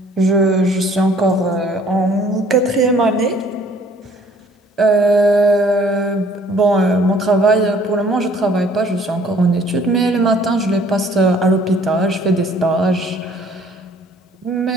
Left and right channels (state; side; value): normal; both; correlation 0.58